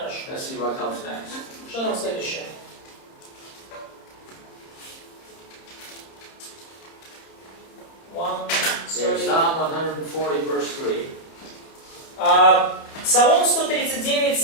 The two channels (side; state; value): right; late; 30 ms